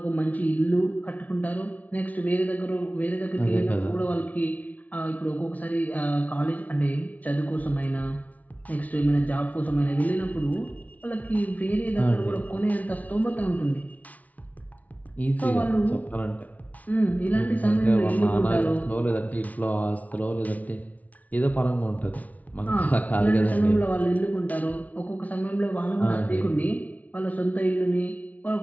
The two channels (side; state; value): right; late; 0.072 ms